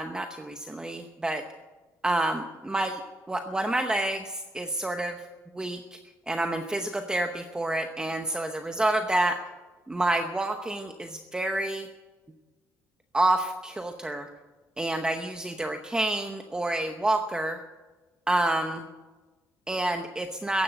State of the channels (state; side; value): normal; both; correlation 0.83